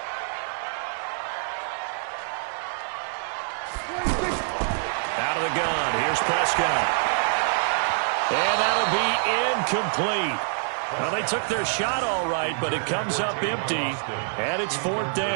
Out of the gun. Here's Prescott. And that'll be incomplete. Well, they took their shot all right, but it comes up empty, and it's 4th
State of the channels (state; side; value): silent; left; digital silence